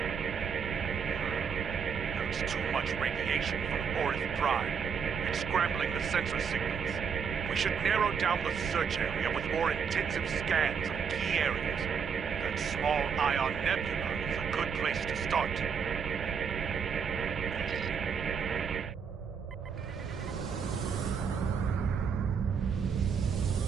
There's too much radiation from Orith Prime. It's scrambling the sensor signals. We should narrow down the search area with more intensive scans of key areas. That small ion nebula is a good place to start.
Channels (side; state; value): left; quieter; 6.5 dB